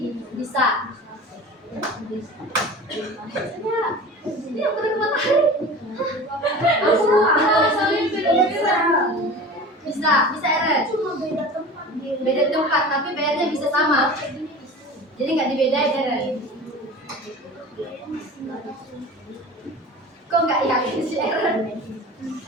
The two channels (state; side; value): normal; both; correlation 0.36